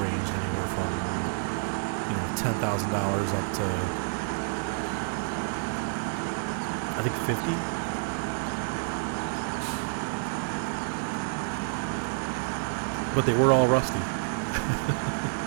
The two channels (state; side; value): silent; left; digital silence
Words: anywhere from $10,000 up to I think 50. But they were all rusty.